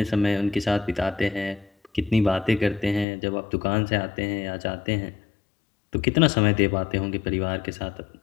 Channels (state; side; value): drops out; right; at 3.1 s